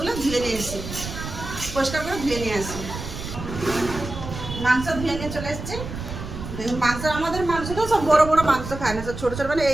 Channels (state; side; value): noise; right; rumble, 8 dB below the sound